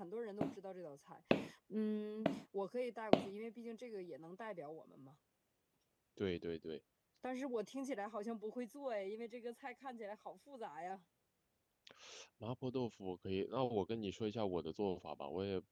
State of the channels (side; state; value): both; identical; correlation 1.00